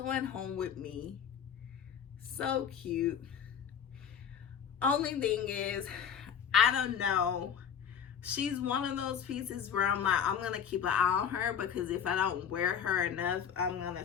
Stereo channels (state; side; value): quieter; right; 8.1 dB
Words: home with me. So cute. Only thing is, I don't know. She's one of those pieces where I'm like, I'm going to keep an eye on her, because if I don't wear her enough, I'm going to